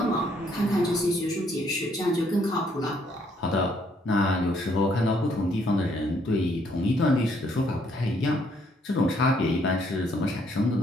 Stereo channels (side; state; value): both; normal; correlation 0.68